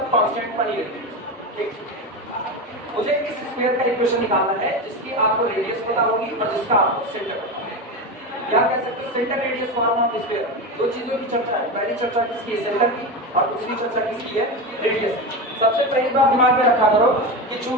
कांस्टेंट बनी रहती है। ठीक, मुझे इस स्फीयर का इक्वेशन निकालना है जिसकी आपको रेडियस पता होगी और जिसका आपको सेंटर पता होगा। क्या कह सकते हैं, centre radius form of sphere. दो चीजों की चर्चा है, पहली चर्चा किसकी है, सेंटर की, और दूसरी चर्चा किसकी है, रेडियस की। सबसे पहली बात दिमाग में रखा करो कि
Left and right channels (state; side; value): normal; both; correlation 0.20